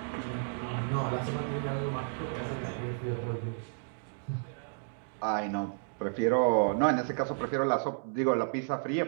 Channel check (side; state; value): left; silent; digital silence